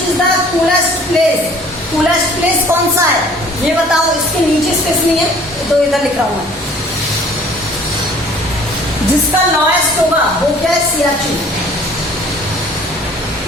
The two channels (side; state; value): both; normal; correlation 0.52